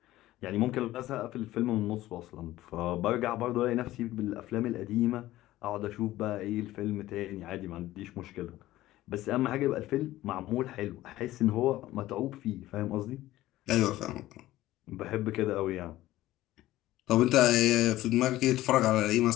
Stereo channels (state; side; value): quieter; right; 15.7 dB